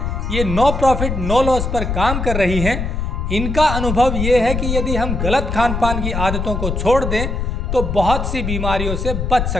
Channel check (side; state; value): left; noise; rumble, 2 dB below the sound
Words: ये नो प्रॉफिट नो लॉस पर काम कर रही हैं। इनका अनुभव ये है कि यदि हम गलत खान पान की आदतों को छोड़ दें तो बहुत सी बीमारियों से बच